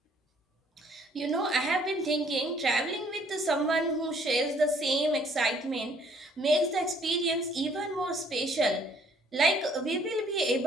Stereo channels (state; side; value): normal; both; correlation 0.62